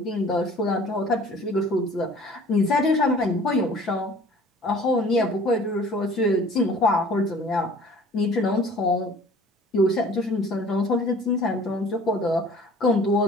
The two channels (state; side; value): normal; both; correlation 0.49